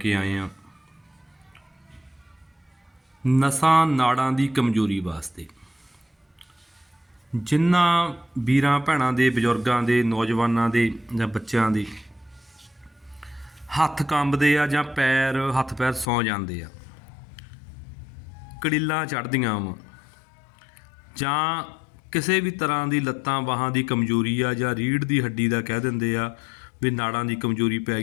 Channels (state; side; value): drops out; right; at 16.1 s